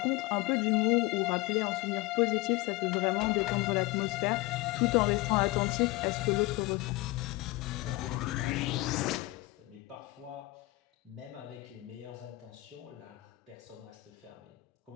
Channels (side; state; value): right; quieter; 21.1 dB